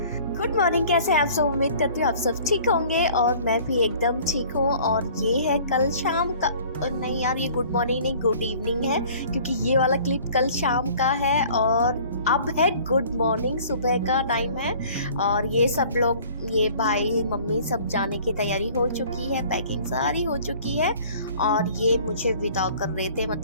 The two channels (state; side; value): inverted; both; correlation -0.51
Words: गुड मॉर्निंग, कैसे हैं आप सब? उम्मीद करती हूँ आप सब ठीक होंगे और मैं भी एकदम ठीक हूँ। और ये है कल शाम का, नहीं यार, ये गुड मॉर्निंग नहीं, गुड इवनिंग है, क्योंकि ये वाला क्लिप कल शाम का है और अब है गुड मॉर्निंग, सुबह का टाइम है। और ये सब लोग, ये भाई मम्मी सब जाने की तैयारी हो चुकी है, पैकिंग सारी हो चुकी है। और ये मुझे विदा कर रहे थे,